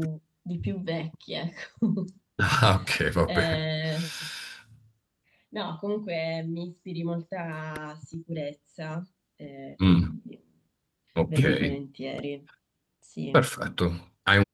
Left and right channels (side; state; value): both; identical; correlation 1.00